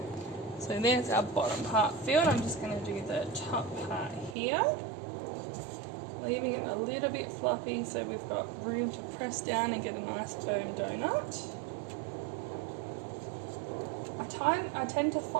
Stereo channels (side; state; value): left; drops out; at 4.4 s